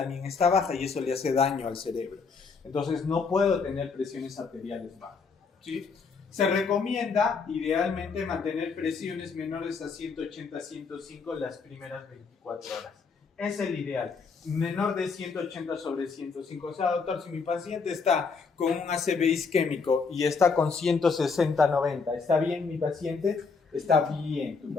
está baja, y eso le hace daño al cerebro. Entonces, no puedo tener presiones arteriales bajas, ¿sí? Se recomienda, idealmente, mantener presiones menores a 180-105 las primeras 24 horas. Es el ideal. Menor de 180 sobre 105. O sea, doctor, si mi paciente está con un ACV isquémico y está con 160-90, ¿está bien mi paciente? Está bien tu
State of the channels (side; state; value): right; quieter; 5.0 dB